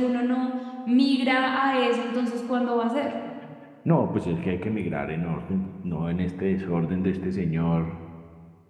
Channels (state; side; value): identical; both; correlation 1.00